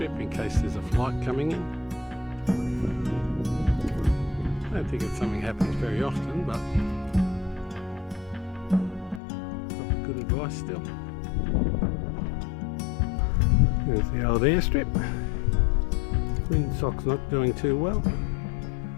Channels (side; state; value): right; drops out; at 9.2 s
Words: in case there's a flight coming in. I don't think it's something that happens very often, but probably good advice still. There's the old airstrip. Windsock's not doing too well.